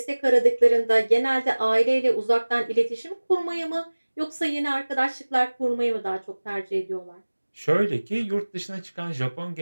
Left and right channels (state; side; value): inverted; both; correlation -1.00